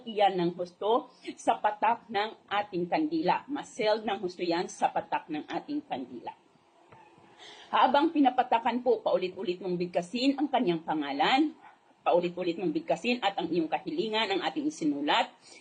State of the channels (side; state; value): both; identical; correlation 1.00